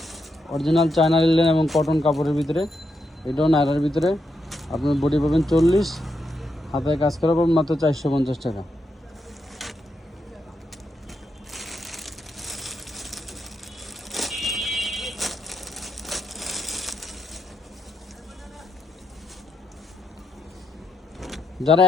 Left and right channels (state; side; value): normal; both; correlation 0.82